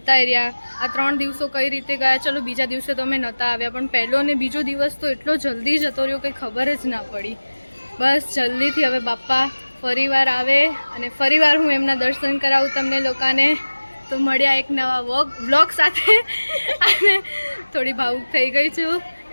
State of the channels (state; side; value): inverted; both; correlation -1.00